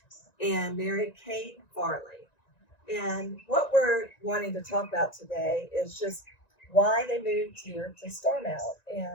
and Mary Kate Farley. And what we're wanting to talk about today is just why they moved here to Starmount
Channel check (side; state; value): right; late; 1.9 ms